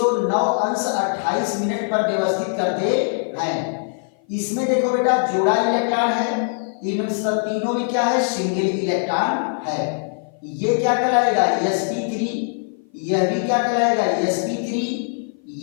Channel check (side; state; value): right; silent; 56 dB below the other